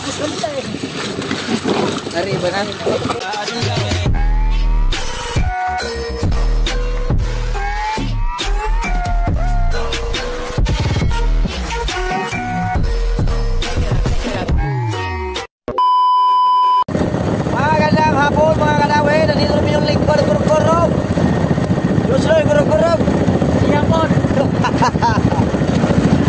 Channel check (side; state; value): both; identical; correlation 1.00